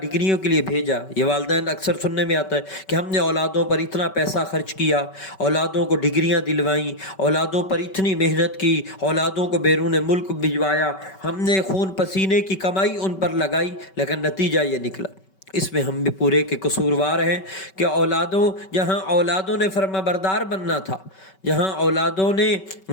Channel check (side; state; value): right; late; 5.3 ms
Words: ڈگریوں کے لیے بھیجا۔ یہ والدین اکثر سننے میں آتا ہے کہ ہم نے اولادوں پر اتنا پیسہ خرچ کیا، اولادوں کو ڈگریاں دلوائیں، اولادوں پر اتنی محنت کی، اولادوں کو بیرون ملک بھجوایا، ہم نے خون پسینے کی کمائی ان پر لگائی، لیکن نتیجہ یہ نکلا۔ اس میں ہم بھی پورے کے قصوروار ہیں کہ جہاں اولادوں نے فرما بردار بننا تھا، جہاں اولادوں نے